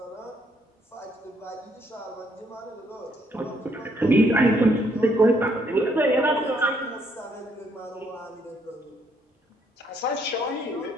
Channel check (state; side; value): normal; both; correlation 0.70